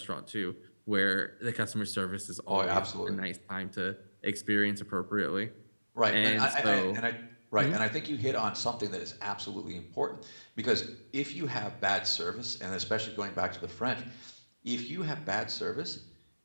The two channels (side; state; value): both; inverted; correlation -1.00